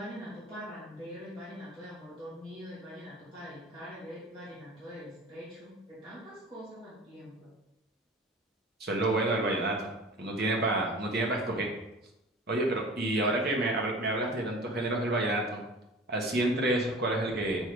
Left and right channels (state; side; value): normal; both; correlation 0.41